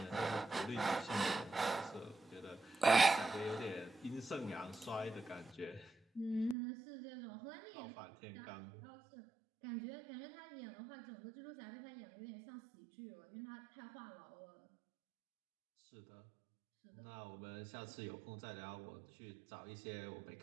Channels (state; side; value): drops out; left; at 6.6 s